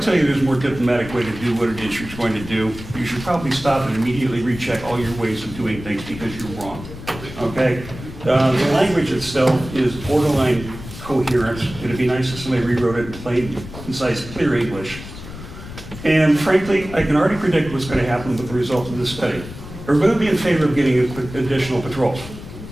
you there's a more diplomatic way to do what it is you're going to do, you should probably stop and immediately recheck all your ways of doing things because you're wrong, okay? The language itself is borderline coherent. It'd be nice if somebody rewrote it in plain, concise, clear English. And frankly, I can already predict what's going to happen with the result of this study. We're going to be in favor of getting additional patrols.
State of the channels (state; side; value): noise; left; rumble, 13 dB below the sound